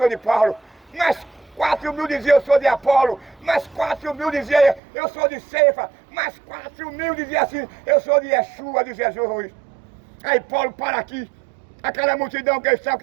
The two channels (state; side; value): drops out; left; at 4.8 s